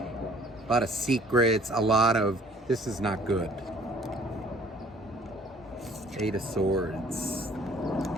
lot of secrets, a lot of... This is not good. Eight of Swords.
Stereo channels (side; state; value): both; normal; correlation 0.56